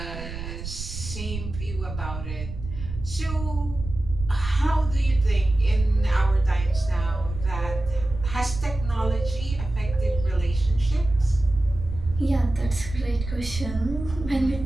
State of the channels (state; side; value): noise; right; rumble, 9 dB below the sound